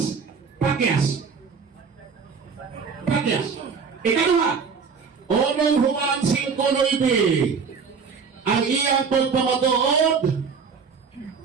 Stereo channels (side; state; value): left; quieter; 5.6 dB